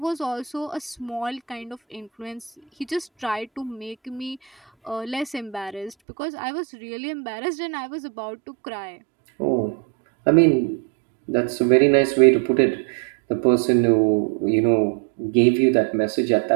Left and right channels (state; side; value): drops out; left; at 6.0 s